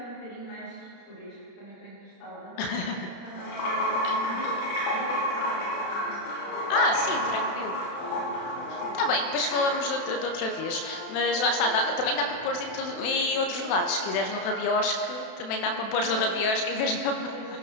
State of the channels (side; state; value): right; late; 32 ms